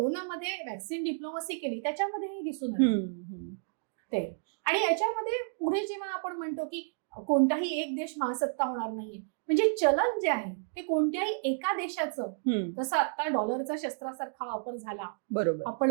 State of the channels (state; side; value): silent; left; digital silence